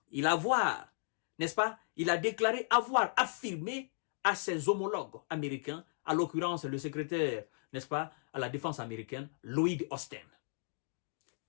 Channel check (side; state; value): right; silent; digital silence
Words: Il a déclaré avoir affirmé à ses homologues américains, à l'occurrence le secrétaire, n'est-ce pas, à la défense américaine, Lloyd Austin,